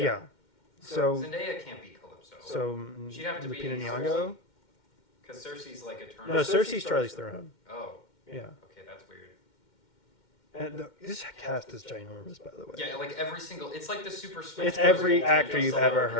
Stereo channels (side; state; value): right; late; 2.1 ms